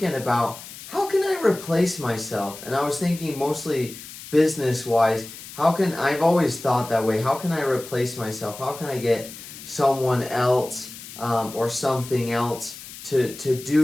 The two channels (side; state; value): left; noise; hiss, 14 dB below the sound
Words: about how can I replace myself, and I was thinking mostly business wise. I've always thought that way. How can I replace myself? How can I get someone else or something else to